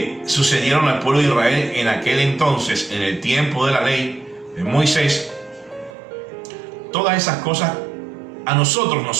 sucedieron al pueblo de Israel en aquel entonces, en el tiempo de la ley de Moisés, todas esas cosas a nosotros nos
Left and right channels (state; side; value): drops out; left; at 6.0 s